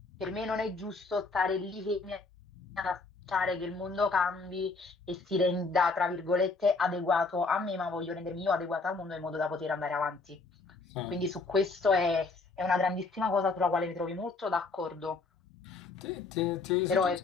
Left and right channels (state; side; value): quieter; right; 3.9 dB